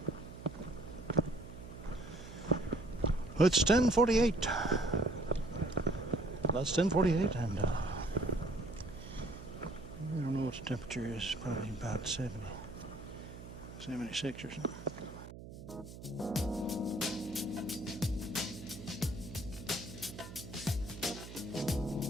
It's 10:48. That's 10:48, and I don't know what the temperature is. Probably about 76 or something.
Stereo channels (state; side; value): noise; right; hum, 13 dB below the sound